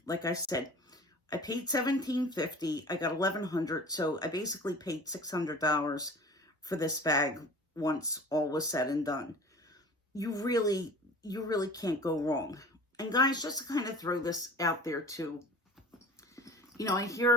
Like I said, I paid $17.50. I got $1,100, so I basically paid $600 for this bag once all was said and done. You really can't go wrong. And guys, just to kind of throw this out there too, you know, I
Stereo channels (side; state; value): both; normal; correlation 0.41